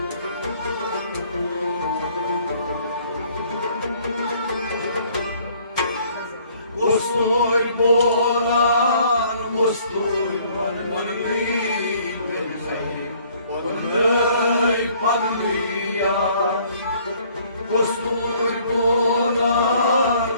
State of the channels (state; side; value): inverted; both; correlation -0.59